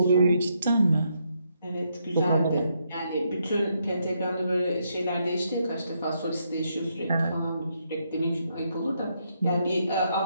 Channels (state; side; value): inverted; both; correlation -0.77